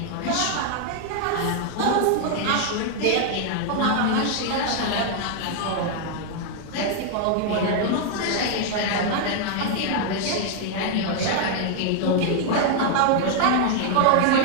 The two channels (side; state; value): both; different; correlation 0.00